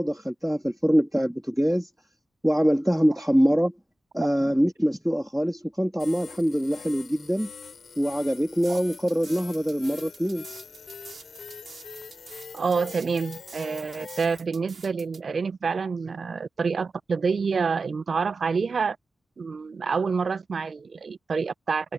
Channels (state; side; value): normal; both; correlation 0.96